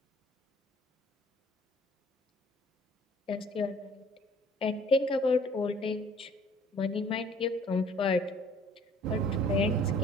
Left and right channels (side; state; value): both; normal; correlation 0.54